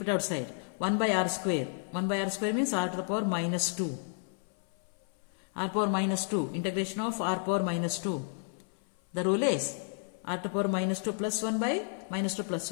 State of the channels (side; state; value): right; silent; 57 dB below the other